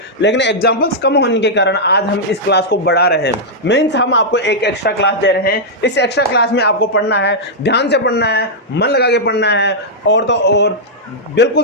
लेकिन एग्जांपल्स कम होने के कारण आज हम इस क्लास को बढ़ा रहे हैं। मीन्स हम आपको एक एक्स्ट्रा क्लास दे रहे हैं। इस एक्स्ट्रा क्लास में आपको पढ़ना है, ध्यान से पढ़ना है, मन लगा के पढ़ना है, और तो और बिल्कुल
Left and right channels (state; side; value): normal; both; correlation -0.08